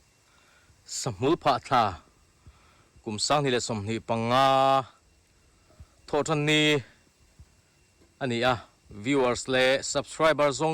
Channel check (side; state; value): both; identical; correlation 1.00